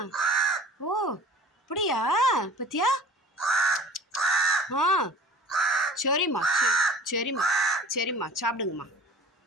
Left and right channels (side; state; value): both; normal; correlation 0.45